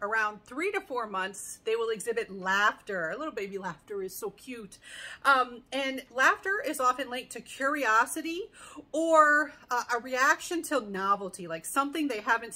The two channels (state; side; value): identical; both; correlation 1.00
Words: around 3 to 4 months, they will exhibit laughter. A little baby laughter is so cute. And laughter is often linked to curiosity or a reaction to novelty, like something they haven't